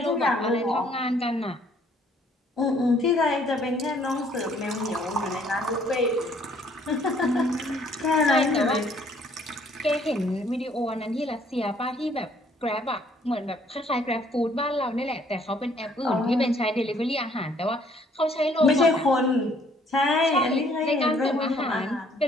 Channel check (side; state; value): both; normal; correlation 0.62